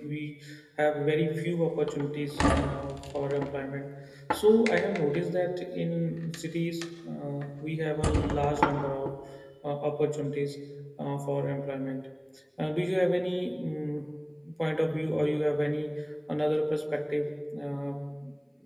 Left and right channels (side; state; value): both; identical; correlation 1.00